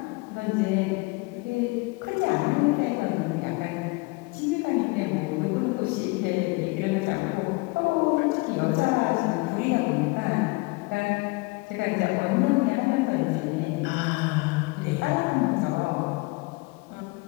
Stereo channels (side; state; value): right; quieter; 25.8 dB